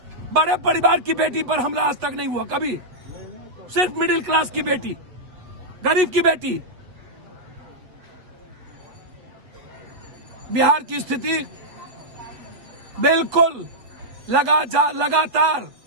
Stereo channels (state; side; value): late; left; 8.1 ms